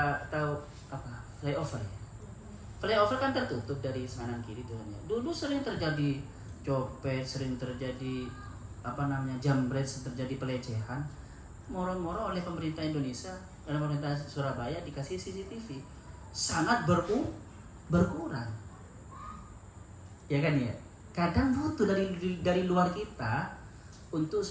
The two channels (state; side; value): identical; both; correlation 1.00